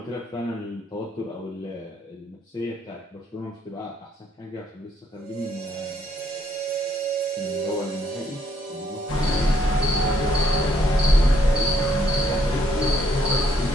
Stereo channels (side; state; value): both; normal; correlation 0.69